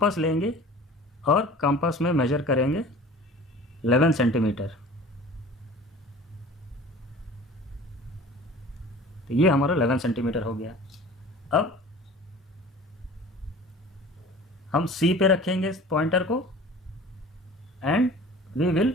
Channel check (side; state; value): both; normal; correlation 0.42